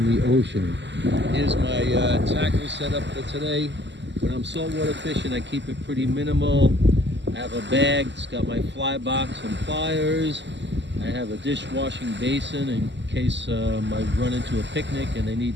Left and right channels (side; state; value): left; late; 0.52 ms